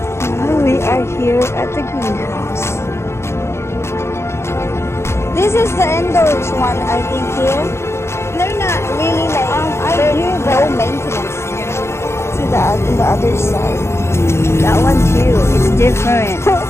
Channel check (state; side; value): late; right; 0.13 ms